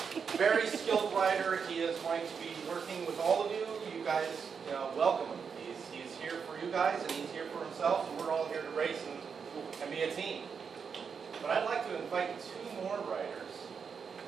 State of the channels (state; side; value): quieter; left; 6.2 dB